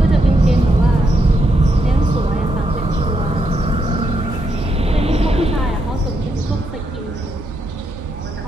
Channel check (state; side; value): normal; both; correlation 0.80